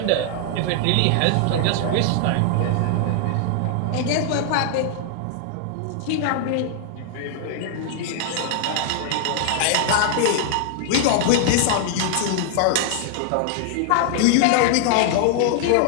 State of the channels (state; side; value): different; both; correlation 0.00